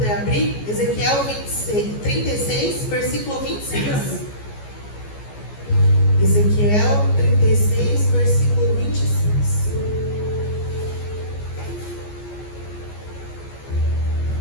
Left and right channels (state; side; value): late; right; 14 ms